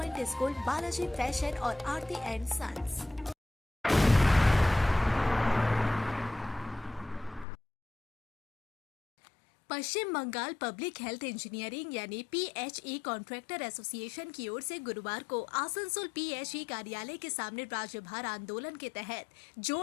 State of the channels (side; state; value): right; drops out; at 7.5 s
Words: school, Balaji fashion और Aarti and sons. Paschim Bangal public health engineering यानी PHE contractor association की ओर से गुरुवार को आसनसोल पीएचई कार्यालय के सामने राज्यभर आंदोलन के तहत